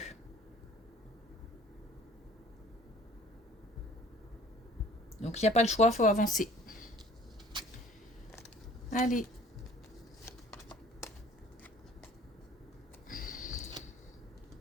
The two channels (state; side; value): normal; both; correlation 0.51